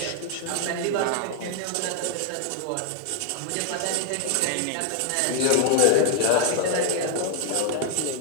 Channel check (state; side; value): different; both; correlation 0.00